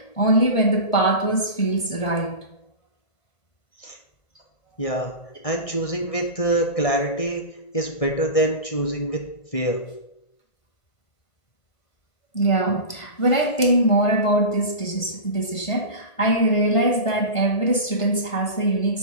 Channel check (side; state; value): right; late; 1.5 ms